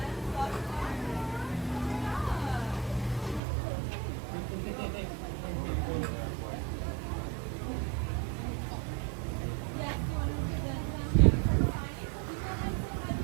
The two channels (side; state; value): left; drops out; at 3.4 s